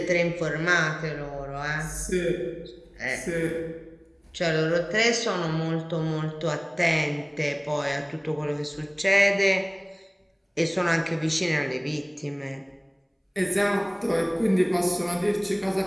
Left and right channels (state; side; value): identical; both; correlation 1.00